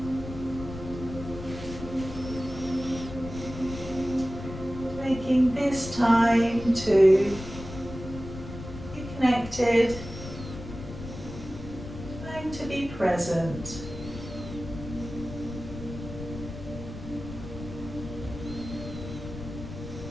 Taking this time to be connected, time to be present.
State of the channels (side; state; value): left; noise; rumble, 11 dB below the sound